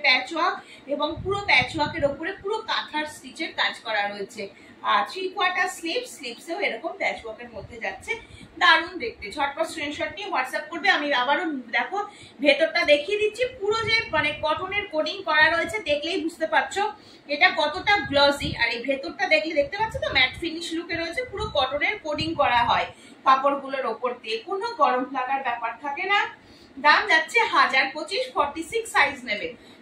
প্যাচওয়ার্ক, এবং পুরো প্যাচওয়ার্কের উপরে পুরো কাঁথার স্টিচের কাজ করা রয়েছে। আর 3/4 স্লিভসেও এরকম প্যাচ ওয়ার্কের মধ্যে যাচ্ছে, দারুণ দেখতে। ঝটপট স্ক্রিনশট নিয়ে হোয়াটসঅ্যাপ করবে। আমি আবারও দেখো ভেতরটা দেখিয়ে দিচ্ছি, পুরো যে মানে কটনের কোডিং করা রয়েছে, দেখলেই বুঝতে পারছো এটা কতটা গ্লসি। আর এই ভেতরটা দেখলে দেখতে পাচ্ছ তো ম্যাট ফিনিশ লুকে রয়েছে, পুরো কটনের কোডিং করা হয় কাপড়গুলোর ওপর দিয়ে, কোনো গরম লাগার ব্যাপার থাকে না। দাম যাচ্ছে 1025, 46 সাইজ নেবে।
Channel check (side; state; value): both; identical; correlation 1.00